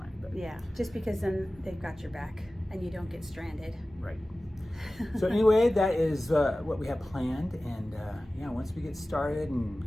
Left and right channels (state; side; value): normal; both; correlation 0.97